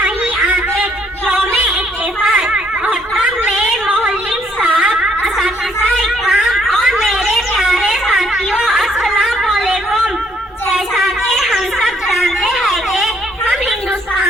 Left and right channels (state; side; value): normal; both; correlation 0.67